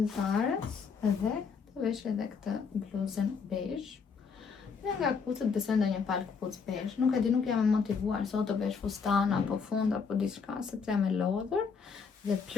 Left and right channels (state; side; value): quieter; right; 5.6 dB